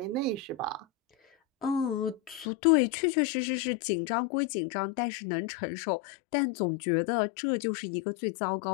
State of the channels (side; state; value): right; drops out; at 2.5 s